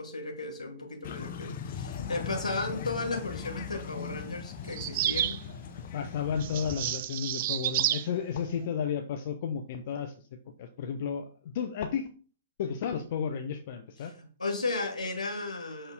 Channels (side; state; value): both; inverted; correlation -0.47